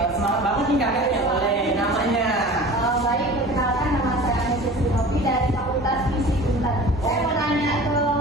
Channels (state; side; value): normal; both; correlation 0.40